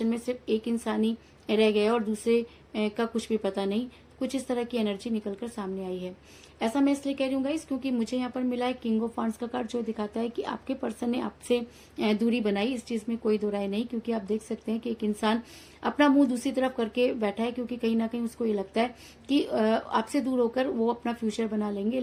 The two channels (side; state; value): both; identical; correlation 1.00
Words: में सिर्फ एक इंसान ही रह गया और दूसरे का कुछ भी पता नहीं। कुछ इस तरह की एनर्जी निकलकर सामने आई है। ऐसा मैं इसलिए कह रही हूँ गाइस, क्योंकि मुझे यहाँ पर मिला है किंग ऑफ वांड्स का कार्ड, जो दिखाता है कि आपके पर्सन ने आपसे दूरी बनाई। इस चीज में कोई दो राय नहीं, क्योंकि आप देख सकते हैं कि एक इंसान अपना मुंह दूसरी तरफ करके बैठा है, क्योंकि कहीं ना कहीं उसको ये लगता है कि आपसे दूर होकर वो अपना फ्यूचर बना लेंगे।